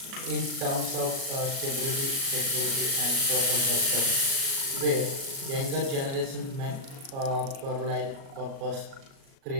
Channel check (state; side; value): late; left; 37 ms